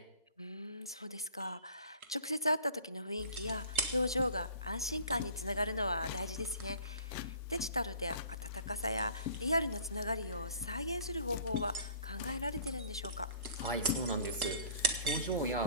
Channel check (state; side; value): inverted; both; correlation -0.49